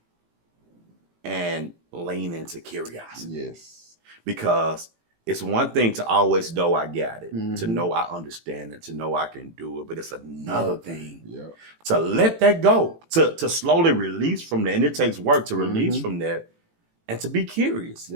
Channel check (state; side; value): late; left; 18 ms